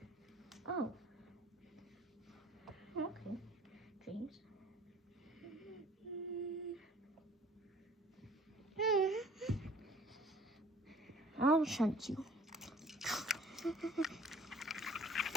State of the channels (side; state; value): both; normal; correlation 0.53